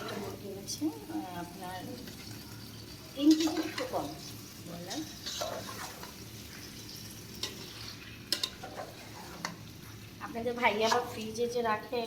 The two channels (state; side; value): identical; both; correlation 1.00